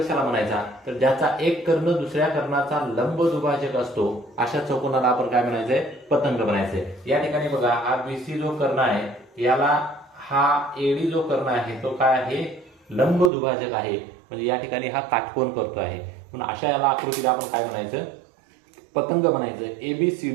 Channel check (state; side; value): drops out; left; at 13.3 s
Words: म्हणायचा? तर ज्याचा एक कर्ण दुसऱ्या कर्णाचा लंब दुभाजक असतो अशा चौकोनाला आपण काय म्हणायचंय? पतंग म्हणायचंय. या ठिकाणी बघा, हा BC जो कर्ण आहे याला हा AD जो कर्ण आहे तो काय आहे? लंब दुभाजक आहे. म्हणजे या ठिकाणी हा काटकोन करतो आहे. म्हणून अशा याला आकृतीला आपण काय म्हणायचं? पतंग म्हणायचं.